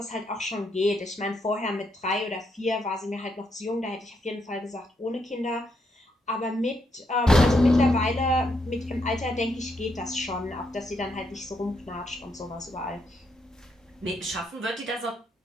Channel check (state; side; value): normal; both; correlation 0.78